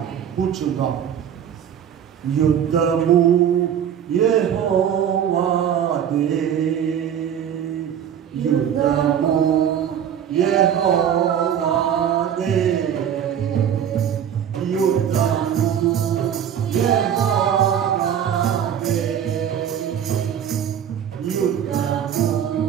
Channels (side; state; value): left; quieter; 9.1 dB